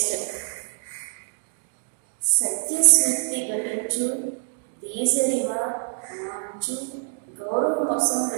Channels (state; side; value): silent; left; digital silence